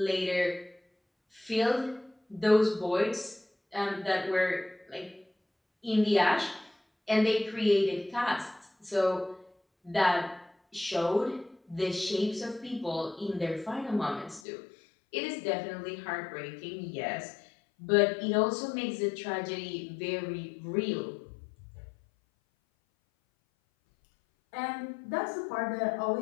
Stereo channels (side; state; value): right; drops out; at 14.4 s